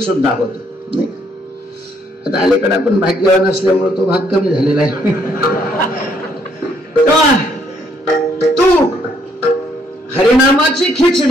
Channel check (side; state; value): both; normal; correlation 0.69